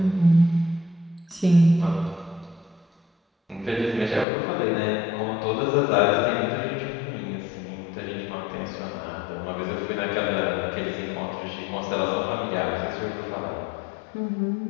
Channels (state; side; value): drops out; right; at 4.2 s